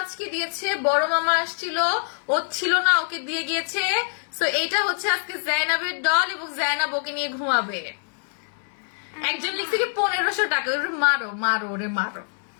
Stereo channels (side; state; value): right; silent; 62 dB below the other